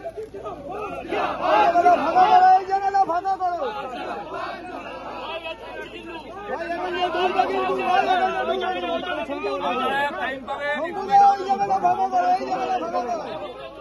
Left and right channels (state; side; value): identical; both; correlation 1.00